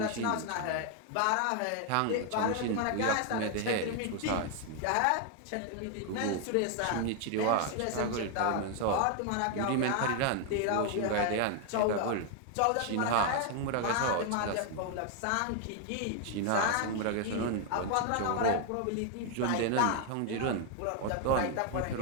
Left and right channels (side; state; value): both; different; correlation 0.00